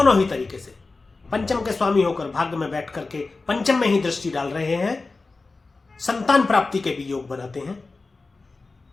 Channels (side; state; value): right; quieter; 3.7 dB